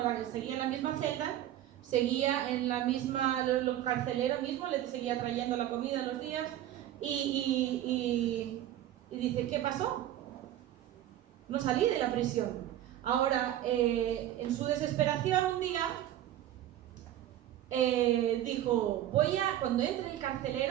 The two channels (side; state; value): left; quieter; 12.5 dB